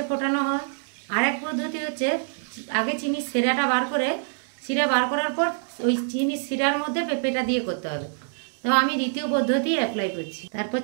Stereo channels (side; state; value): left; silent; digital silence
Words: ফোটানো হয়। আর এক পদ্ধতি হচ্ছে আগে চিনি শিরাটা বার করে শিরা বার করার পর ওই চিনি শিরার মধ্যে পেঁপেটা দিয়ে করতে হবে। তো আমি দ্বিতীয় পদ্ধতি অ্যাপ্লাই করছি। তারপর